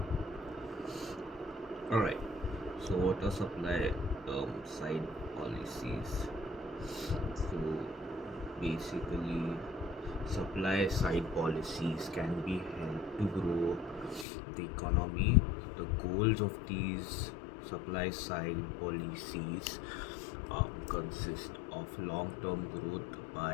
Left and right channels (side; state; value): right; drops out; at 14.2 s